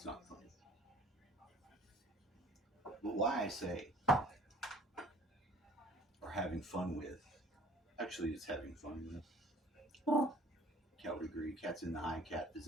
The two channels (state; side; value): normal; both; correlation 0.51